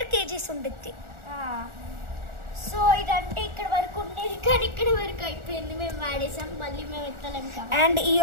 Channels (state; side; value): late; left; 1.4 ms